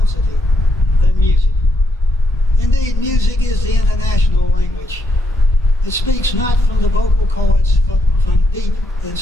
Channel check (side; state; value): both; normal; correlation 0.77